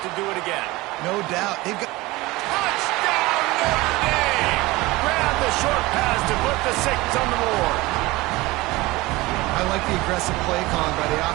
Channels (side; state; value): left; quieter; 20.8 dB